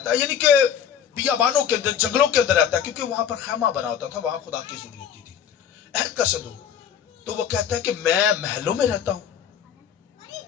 है, यानी कि बियाबानों के अंदर, जंगलों के अंदर रहता है, क्योंकि वहां पर खैमा बना होता था, वहां खुदा की जरूरत होती थी, अहद का संदूक। तो वो कहता है कि मैं महलों में रहता हूं,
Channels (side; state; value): right; quieter; 8.7 dB